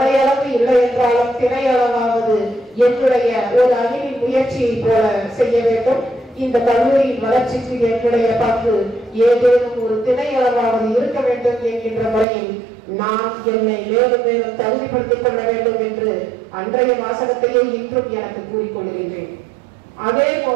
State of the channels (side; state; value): left; drops out; at 12.2 s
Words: இல்லை என்றாலும் திணையளவாவது என்னுடைய ஒரு அணியின் முயற்சியை போல செய்ய வேண்டும். இந்த கல்லூரியின் வளர்ச்சிக்கு என்னுடைய பங்கு ஏதேனும் ஒரு திணையளவாவது இருக்க வேண்டும் என்கின்ற முறையில் நான் என்னை மேலும் மேலும் தகுதிப்படுத்திக் கொள்ள வேண்டும் என்று அன்றைய வாசகத்தையே இன்றும் எனக்கு கூறிக்கொள்கின்றேன். அதே